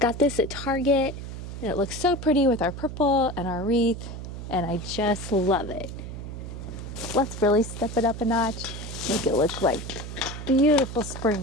this at Target, and it looks so pretty with our purple and our wreath, and I just love it. Let's really step it up a notch, make it look like beautiful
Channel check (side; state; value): right; noise; hum, 9 dB below the sound